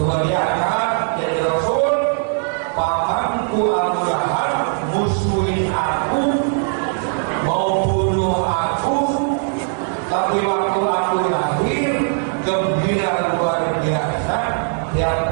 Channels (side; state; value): left; silent; 66 dB below the other